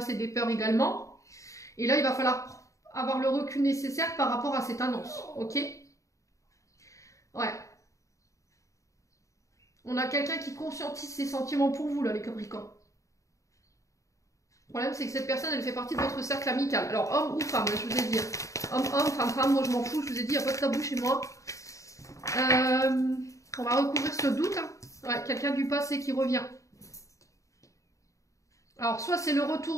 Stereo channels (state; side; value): late; right; 0.15 ms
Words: et des peurs également. Et là, il va falloir avoir le recul nécessaire par rapport à cette annonce. Ok? Ouais. On a quelqu'un qui conscientise ses sentiments pour vous, là, les Capricornes. Le problème, c'est que cette personne, elle fait partie de votre cercle amical. Alors, homme ou femme, je vous ai dit. Homme, femme, moi je m'en fous, je vous ai dit, il n'y a pas de tabou chez moi. On va recouvrir ce doute. Hein. Ouais, quelqu'un du passé qui revient. Alors, soit c'est le